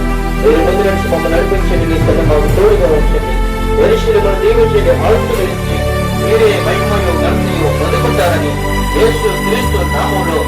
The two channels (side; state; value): both; identical; correlation 1.00